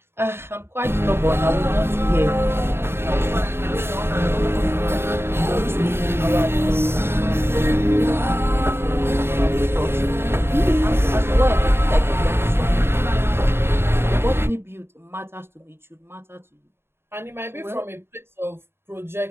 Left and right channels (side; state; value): left; late; 0.11 ms